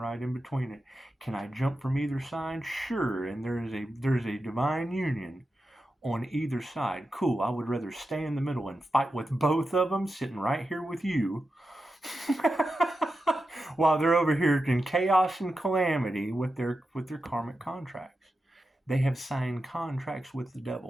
in between it. Can I jump from either side? Sure. And there's a divine union on either side. Cool. I would rather stay in the middle and fight with both of them, sitting right here with you, while they're over here in chaos and calamity with their karmic contracts. They have signed contracts with the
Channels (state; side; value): normal; both; correlation 0.90